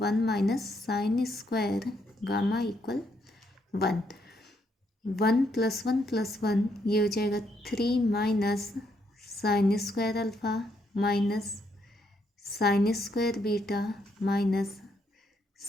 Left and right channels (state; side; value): normal; both; correlation 0.74